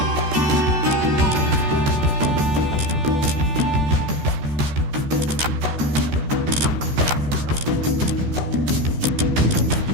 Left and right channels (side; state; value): left; late; 14 ms